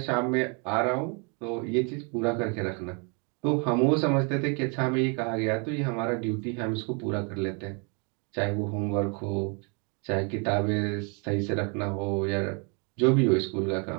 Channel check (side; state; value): left; quieter; 35.5 dB